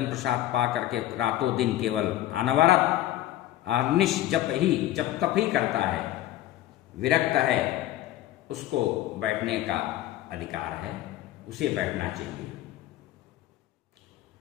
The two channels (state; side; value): quieter; right; 14.2 dB